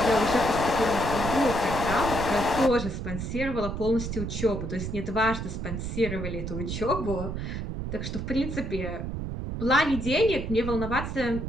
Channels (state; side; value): noise; right; rumble, 5 dB below the sound